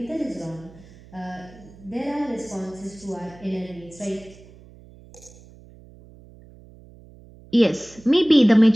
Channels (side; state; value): right; noise; hum, 23 dB below the sound